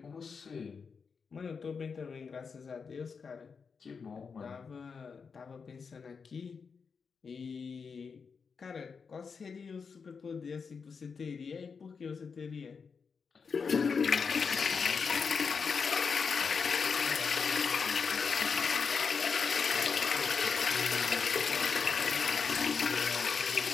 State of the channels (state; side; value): quieter; right; 5.6 dB